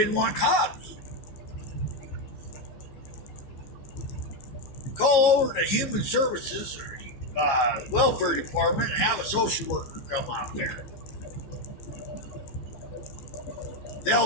want cops. Call over to Human Services or Welfare Department and have a social worker come out there.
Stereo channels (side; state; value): right; late; 15 ms